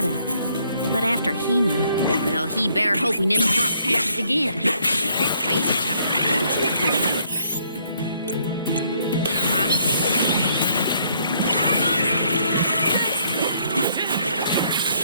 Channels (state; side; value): inverted; both; correlation -0.68